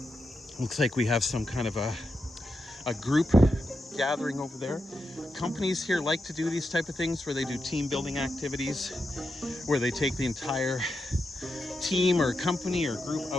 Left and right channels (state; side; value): normal; both; correlation 0.86